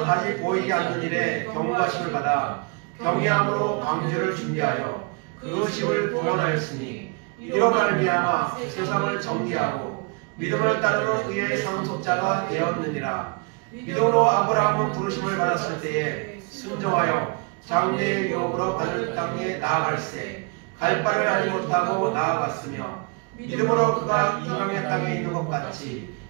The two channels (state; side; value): quieter; left; 31.1 dB